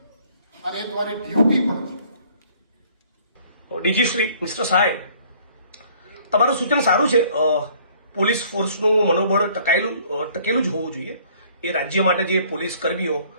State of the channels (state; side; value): inverted; both; correlation -0.57